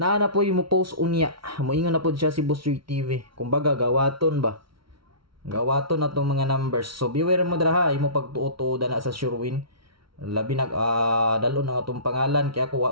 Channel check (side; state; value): left; late; 0.74 ms